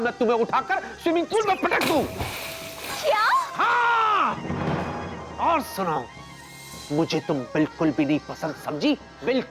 तुम्हें उठाकर स्विमिंग पूल में पटक दूं। क्या? हाँ, और सुनो, मुझे तुम बिल्कुल भी नहीं पसंद समझी,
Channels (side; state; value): both; identical; correlation 1.00